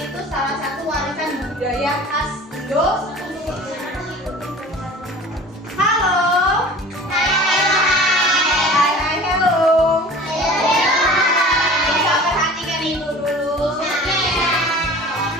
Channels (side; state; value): both; normal; correlation 0.42